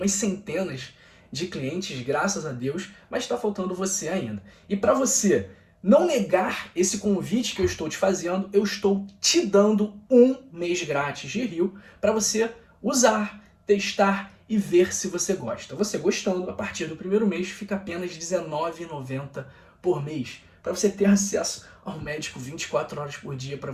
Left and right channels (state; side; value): identical; both; correlation 1.00